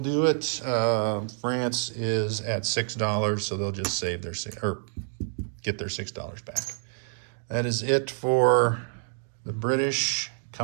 it. France is at $6, so they'll just save their get their $6 back. That is it for the British,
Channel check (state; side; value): silent; left; digital silence